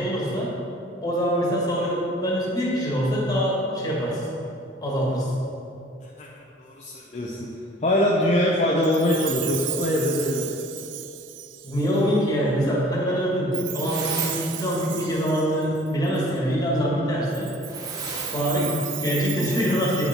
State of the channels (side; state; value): both; normal; correlation 0.50